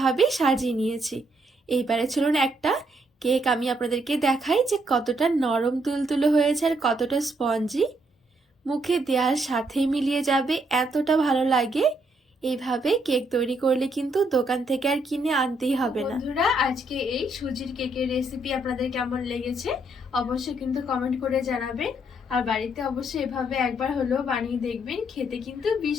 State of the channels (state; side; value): normal; both; correlation 0.73